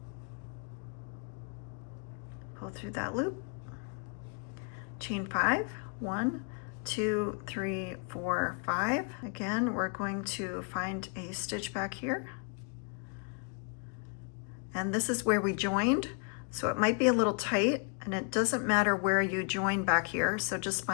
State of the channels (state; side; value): quieter; right; 39.8 dB